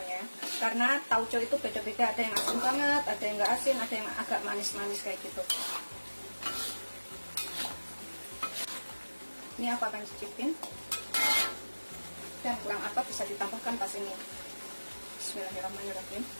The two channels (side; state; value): both; inverted; correlation -1.00